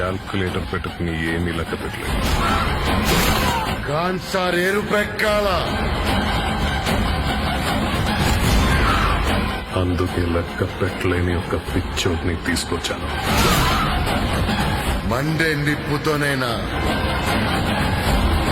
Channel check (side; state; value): both; identical; correlation 1.00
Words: పెట్టుకుని ఏమీ లెక్క పెట్టలేదు. ఖాన్సార్ ఎరుపెక్కాల, అందుకే లెక్క పెట్టలేని ఒక పిచ్చోడ్ని తీసుకొచ్చాను. మండే నిప్పుతోనైనా